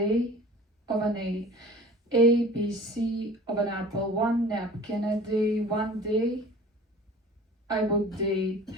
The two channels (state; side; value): normal; both; correlation 0.43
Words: of an A. A, B, C of an apple, one napkin a day, one day I would day.